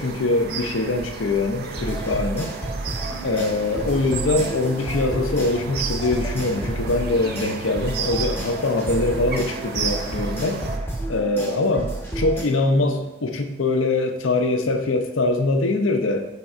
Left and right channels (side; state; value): both; normal; correlation 0.22